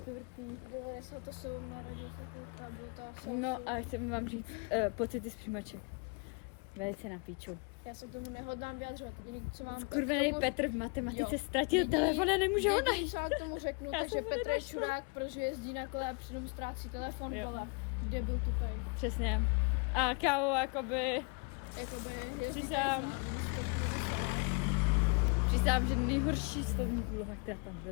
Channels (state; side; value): quieter; right; 34.5 dB